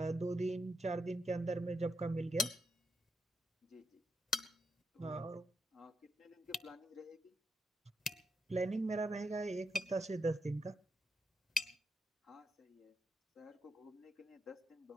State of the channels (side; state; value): both; normal; correlation 0.82